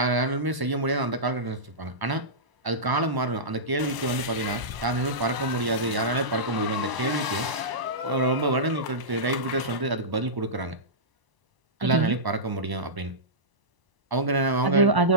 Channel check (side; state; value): left; late; 1.0 ms